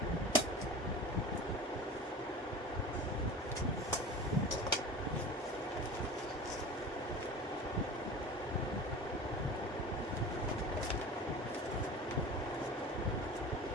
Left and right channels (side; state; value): both; normal; correlation 0.36